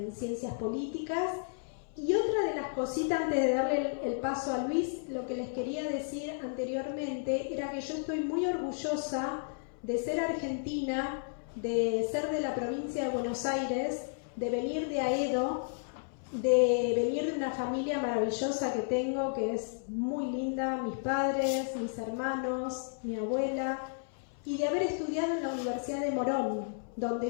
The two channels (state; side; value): silent; right; 56 dB below the other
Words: ciencias políticas. Y otra de las cositas, antes de darle el paso a Luis, lo que les quería decir anteriormente era que yo estoy muy orgullosa de ser argentina, de ser de la provincia de Buenos Aires, de venir de Aedo, de venir de una familia maravillosa que tengo, que es muy linda, mis padres, mis hermanos, mi abuela, y de haber estudiado en la Universidad de Morón,